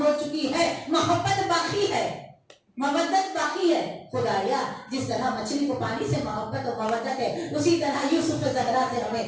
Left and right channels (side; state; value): both; identical; correlation 1.00